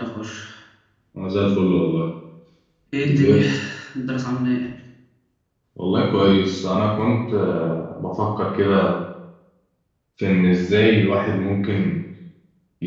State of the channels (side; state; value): both; identical; correlation 1.00